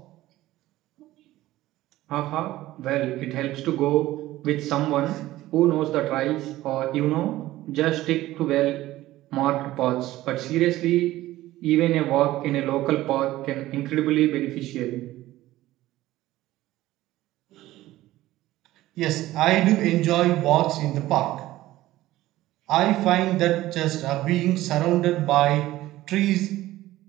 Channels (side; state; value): left; quieter; 16.0 dB